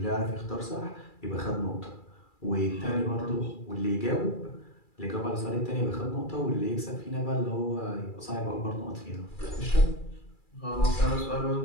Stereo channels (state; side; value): late; right; 2.3 ms